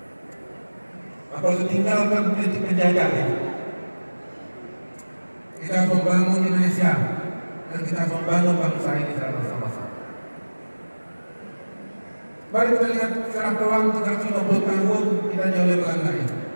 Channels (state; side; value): inverted; both; correlation -1.00